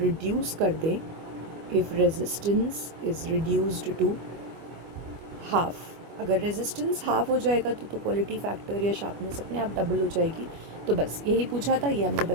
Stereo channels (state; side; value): late; left; 25 ms